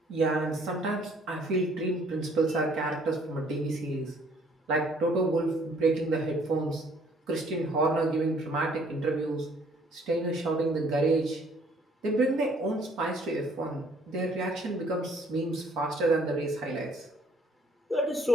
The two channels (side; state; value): both; normal; correlation 0.62